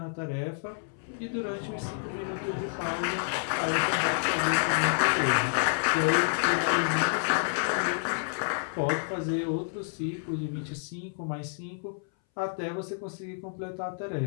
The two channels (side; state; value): right; silent; 58 dB below the other